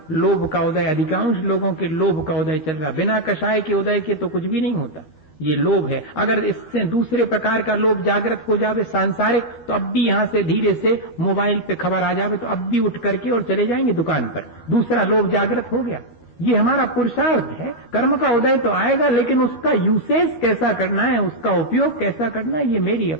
लोभ का उदय, अधिकांश लोगों के लोभ का उदय चल रहा। बिना कषाय के उदय के तो कुछ भी नहीं होता, ये लोभ है। अगर इससे दूसरे प्रकार का लोभ जागृत हो जावे, सांसारिक, तो अब भी यहां से धीरे से मोबाइल पे खबर आ जावे तो अब भी उठ करके और चले जाएंगे दुकान पर। दूसरा लोभ जागृत हो गया। ये हमारा पुरुषार्थ है। कर्म का उदय तो आएगा, लेकिन उसका यूसेज कैसा करना है, उसका उपयोग कैसा करना है, ये मेरी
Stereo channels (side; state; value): right; late; 12 ms